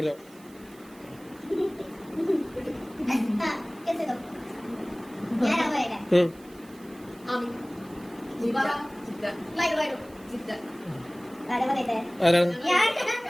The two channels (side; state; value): right; noise; hiss, 25 dB below the sound